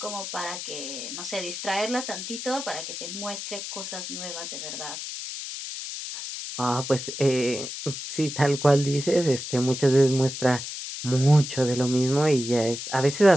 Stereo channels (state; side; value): noise; left; hiss, 7 dB below the sound